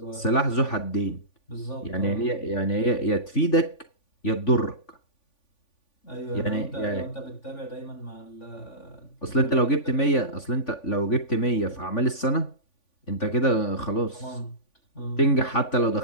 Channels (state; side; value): late; right; 3.5 ms